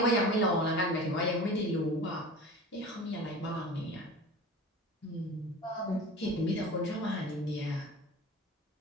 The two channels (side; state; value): both; normal; correlation 0.36